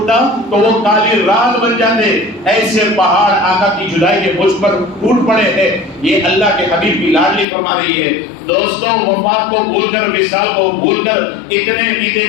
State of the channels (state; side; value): drops out; right; at 7.5 s